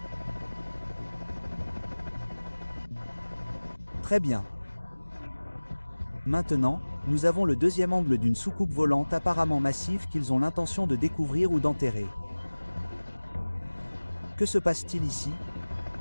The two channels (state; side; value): inverted; both; correlation -1.00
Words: Très bien. Maintenant, nous avons le deuxième angle d'une soucoupe volante apparemment massive qu'ils ont l'intention de découvrir ou d'enterrer. Que se passe-t-il ici